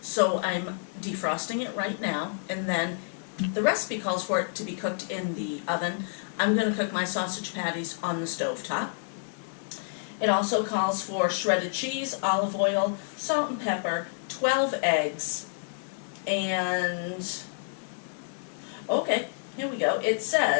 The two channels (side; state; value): right; silent; digital silence